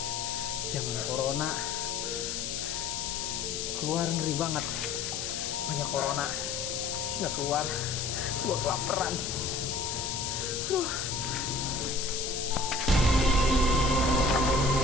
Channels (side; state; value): left; noise; hiss, 3 dB below the sound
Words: Zaman corona. Keluar ngeri banget. Banyak corona. Nggak keluar. Gua kelaparan. Aduh.